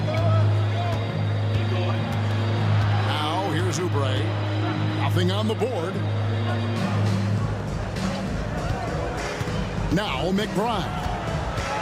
Now, here's Oubre. Nothing on the board. Now, McBride.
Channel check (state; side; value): identical; both; correlation 1.00